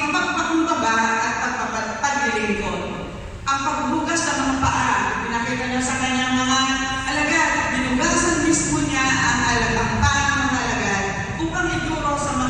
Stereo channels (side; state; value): both; identical; correlation 1.00